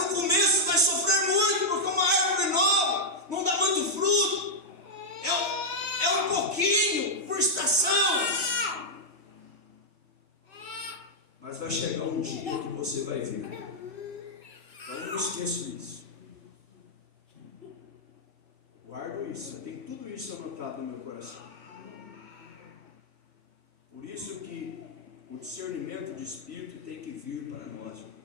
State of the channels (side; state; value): left; late; 3.4 ms